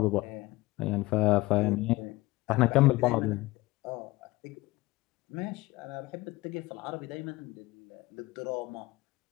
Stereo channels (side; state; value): right; quieter; 19.9 dB